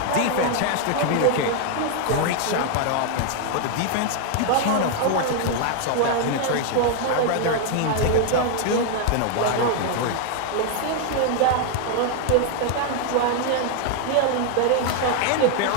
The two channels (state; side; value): different; both; correlation 0.00